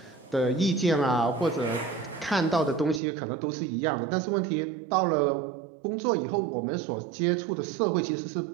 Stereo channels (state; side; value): drops out; left; at 3.0 s